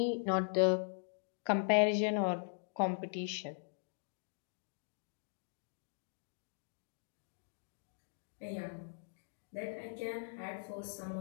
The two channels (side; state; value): right; silent; digital silence